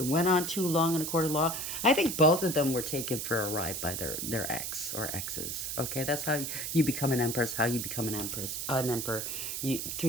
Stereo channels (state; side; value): noise; right; hiss, 4 dB below the sound